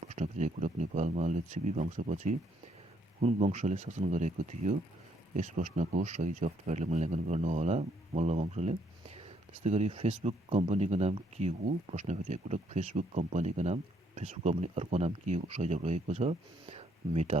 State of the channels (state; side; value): normal; both; correlation 0.70